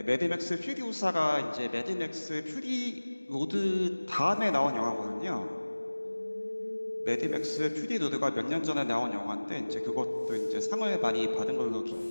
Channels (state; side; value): inverted; both; correlation -1.00